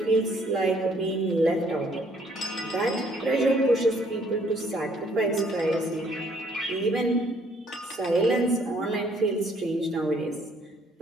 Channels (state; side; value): normal; both; correlation 0.64